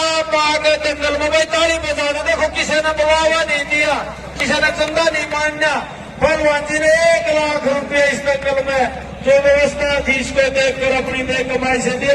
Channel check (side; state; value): both; identical; correlation 1.00